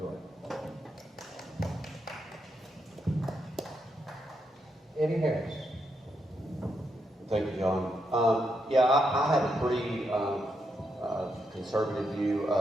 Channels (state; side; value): normal; both; correlation 0.81